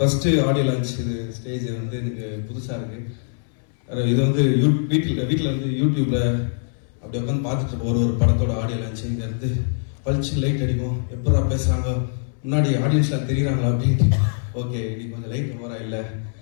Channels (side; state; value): right; silent; 64 dB below the other